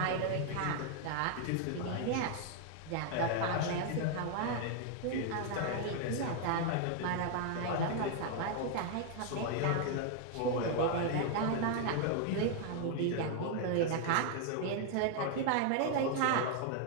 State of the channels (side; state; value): both; different; correlation 0.00